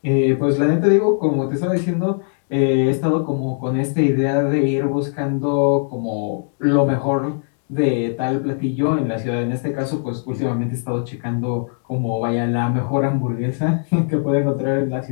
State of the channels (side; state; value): right; silent; digital silence